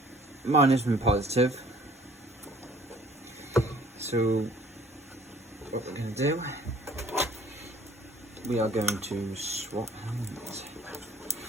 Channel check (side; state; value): both; normal; correlation 0.56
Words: minus and positive. So what we're going to do, we are going to swap hands.